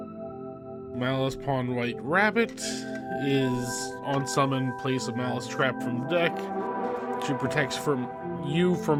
Maliss Pawn White Rabbit is on summon, place a Maliss trap from the deck. She protects from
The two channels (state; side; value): identical; both; correlation 1.00